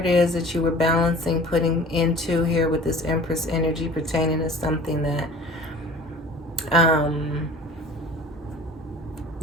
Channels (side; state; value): both; normal; correlation 0.44